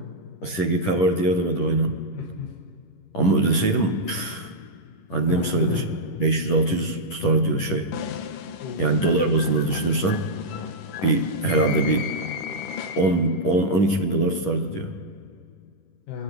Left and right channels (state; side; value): late; right; 11 ms